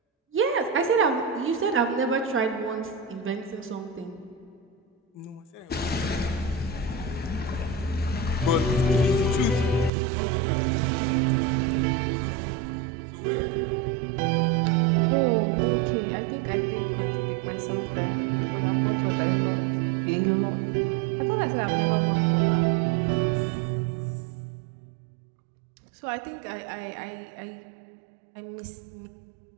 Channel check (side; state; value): left; drops out; at 9.9 s